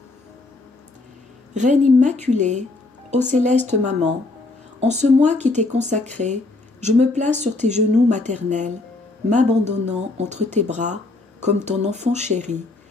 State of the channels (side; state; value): right; quieter; 3.1 dB